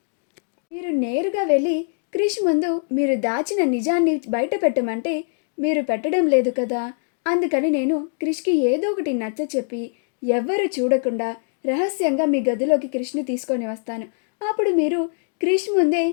మీరు నేరుగా వెళ్ళి క్రిష్ ముందు మీరు దాచిన నిజాన్ని బయట పెట్టమంటే మీరు పెట్టడం లేదు కదా. అందుకని నేను క్రిష్కి ఏదో ఒకటి నచ్చ చెప్పి ఎవ్వరూ చూడకుండా రహస్యంగా మీ గదిలోకి క్రిష్ని తీసుకొని వస్తాను. అప్పుడు మీరు క్రిష్ ముందే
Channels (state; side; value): silent; right; digital silence